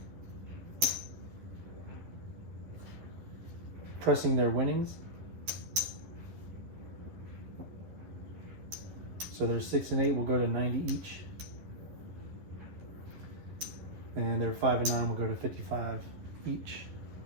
pressing their winnings. So their 6 and 8 will go to 90 each. And their 5 and 9 will go to 55 each.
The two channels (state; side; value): late; left; 11 ms